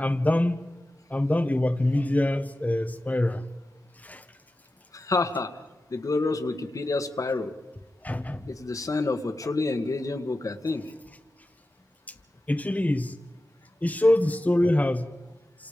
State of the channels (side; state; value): both; normal; correlation 0.93